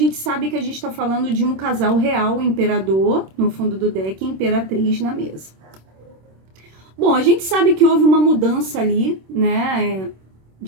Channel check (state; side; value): late; left; 26 ms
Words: sabe que a gente está falando de um casal real, imperador, no fundo do deck, e imperatriz na mesa. Bom, a gente sabe que houve uma mudança ali, né,